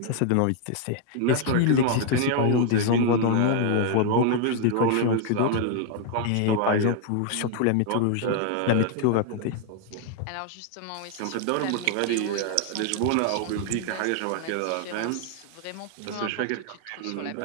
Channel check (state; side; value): different; both; correlation 0.00